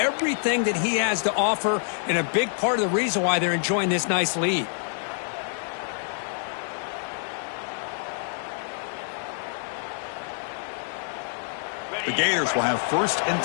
that he has to offer, and a big part of the reason why they're enjoying this nice lead. The Gators will have 1st and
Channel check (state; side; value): silent; right; 60 dB below the other